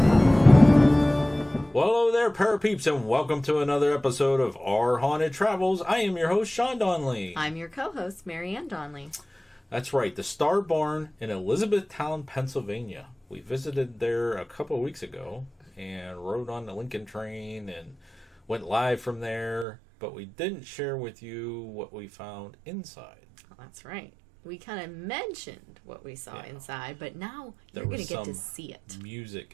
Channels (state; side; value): drops out; left; at 19.7 s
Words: Well, hello there, Parapeeps, and welcome to another episode of Our Haunted Travels. I am your host, Sean Donnelly. I'm your co-host, Marianne Donnelly. That's right, the Star Barn in Elizabethtown, Pennsylvania. We visited there a couple of weeks ago and rode on the Lincoln train and went live from there, but we didn't share with you what we found inside. Oh, that's right. We kind of mentioned what we saw inside, but now you're going to get to see it. Music